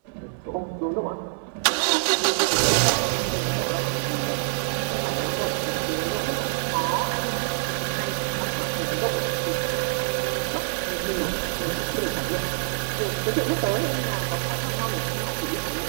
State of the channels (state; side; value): silent; left; 61 dB below the other